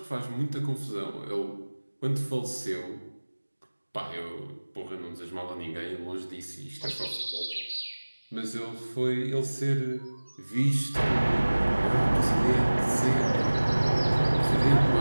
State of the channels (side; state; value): both; inverted; correlation -1.00